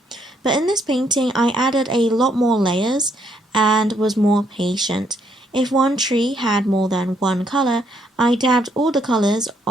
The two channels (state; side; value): normal; both; correlation 0.72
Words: But in this painting, I added a lot more layers and was more patient. If one tree had more than one color, I dabbed all the colors